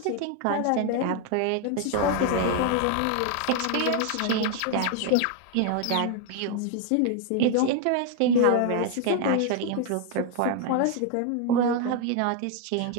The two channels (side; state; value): both; different; correlation 0.01